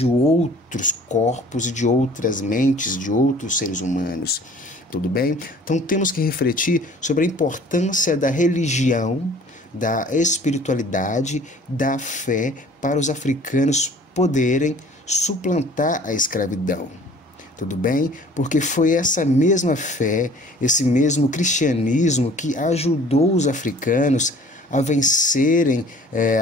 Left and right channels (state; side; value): normal; both; correlation 0.50